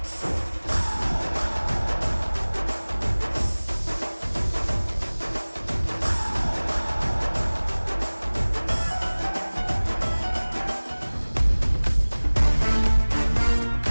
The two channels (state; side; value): inverted; both; correlation -1.00